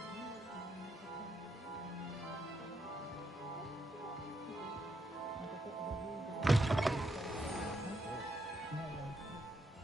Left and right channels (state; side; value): normal; both; correlation 0.79